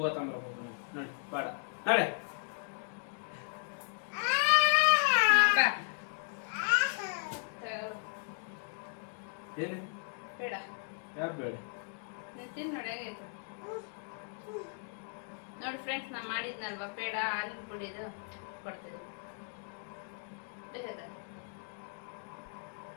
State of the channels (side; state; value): right; silent; 54 dB below the other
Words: ತಗೊಂಡ್ಬರ್ಬೇಕು ನೋಡಿ ಬೇಡ ನಾಳೆ ಏನು ಬೇಡ ಯಾರು ಬೇಡ ತಿನ್ ನೋಡಿ ಹೇಗೈತೆ ನೋಡಿ ಫ್ರೆಂಡ್ಸ್ ನಾ ಮಾಡಿದ್ನಲ್ವಾ ಪೇಡ ಹಾಲಿನ ಪುಡಿದು ಕೊಡ್ತಿದ್ದೆ